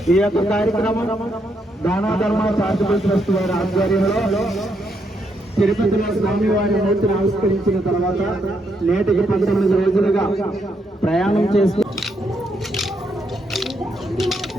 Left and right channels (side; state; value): both; normal; correlation 0.77